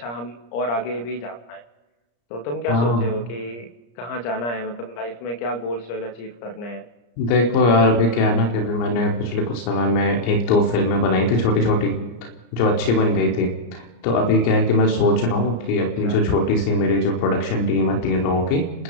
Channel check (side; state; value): right; late; 34 ms